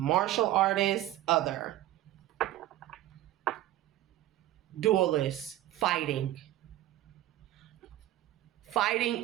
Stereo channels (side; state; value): left; quieter; 14.2 dB